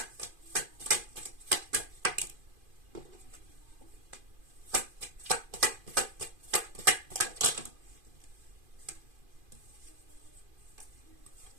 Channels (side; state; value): left; late; 2.5 ms